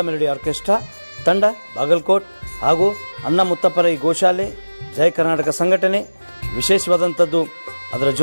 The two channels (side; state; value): both; inverted; correlation -1.00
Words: ಮೆಲೋಡಿ ಆರ್ಕೆಸ್ಟ್ರಾ ತಂಡ ಬಾಗಲಕೋಟ್ ಹಾಗೂ ಅನ್ನ ಮುತ್ತಪ್ಪರೈ ಗೋಶಾಲೆ ಜಯ ಕರ್ನಾಟಕ ಸಂಘಟನೆ. ವಿಶೇಷವಾದಂಥದ್ದು ಅದರ